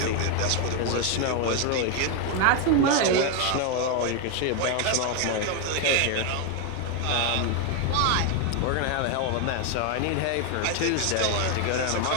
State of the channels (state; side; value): different; both; correlation 0.01